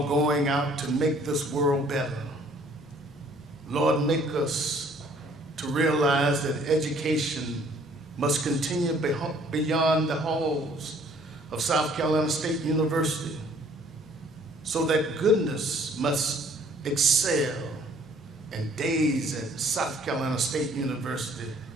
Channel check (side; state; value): both; normal; correlation 0.58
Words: going out to make this world better. Lord, make us to realize that education must continue beyond the halls of South Carolina State University, so that goodness must excel, and days at South Carolina State University